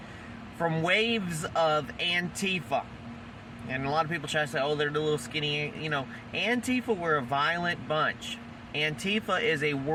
from waves of Antifa. And a lot of people try to say, oh, they're the little skinny, Antifa were a violent bunch. Antifa is a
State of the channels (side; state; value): both; identical; correlation 1.00